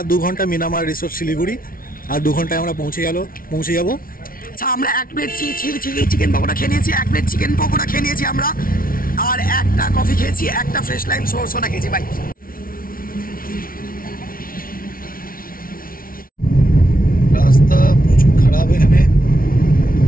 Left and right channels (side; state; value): right; late; 0.42 ms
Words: 2 ঘন্টা মিরামার রিসোর্ট শিলিগুড়ি, আর 2 ঘন্টায় আমরা পৌঁছে যাব। আচ্ছা, আমরা 1 প্লেট চিকেন পকোড়া খেয়ে নিয়েছি, 1 প্লেট চিকেন পকোড়া খেয়ে নিয়েছি আমরা, আর একটা কফি খেয়েছি, একটা ফ্রেশ লাইম সোডা খেয়েছি ভাই। রাস্তা প্রচুর খারাপ এখানে।